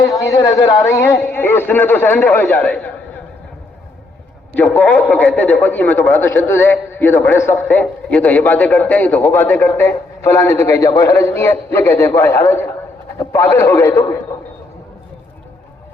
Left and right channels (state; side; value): quieter; right; 3.1 dB